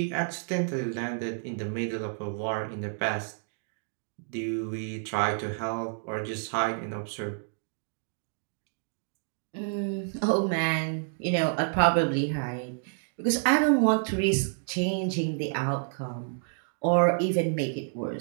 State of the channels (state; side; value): silent; left; digital silence